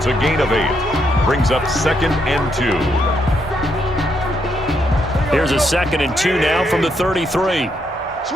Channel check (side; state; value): both; normal; correlation 0.77